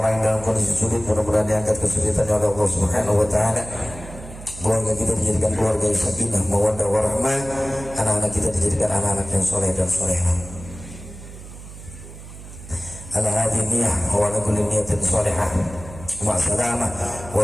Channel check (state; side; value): noise; right; hum, 15 dB below the sound